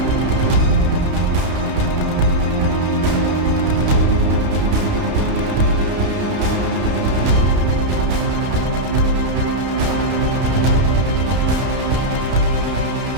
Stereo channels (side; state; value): left; late; 31 ms